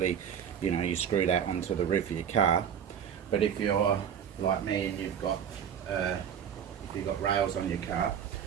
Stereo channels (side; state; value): left; quieter; 8.4 dB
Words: you know, you screw that onto the roof of your car. But if you're like me and you've got rails on your car,